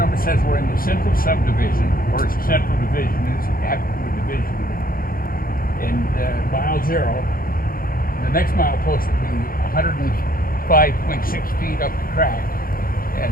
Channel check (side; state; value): right; late; 0.42 ms